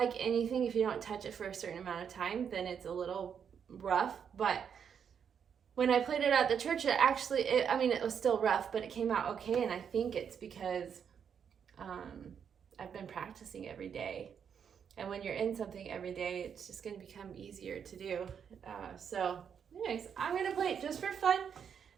anything, if you don't touch it for a certain amount of time, then it's a little rough. But when I played it at the church, it was still rough, but it came out okay. And I think it's because I've been practicing every day. And when you're in something every day, it's just going to become easier to do. So anyways, I'm going to play it just for fun.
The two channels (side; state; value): left; quieter; 7.5 dB